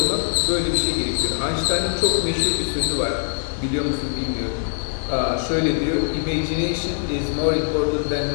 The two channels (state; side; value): silent; right; digital silence